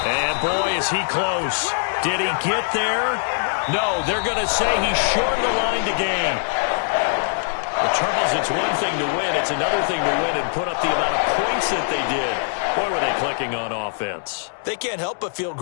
and boy, is he close. Did he get there? No, they're going to say he's short the line to gain. Well, Charles, it's one thing to win. It's another thing to win and put up the amount of points that they did. Boy, were they clicking on offense. They can't help but feel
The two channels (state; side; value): silent; right; digital silence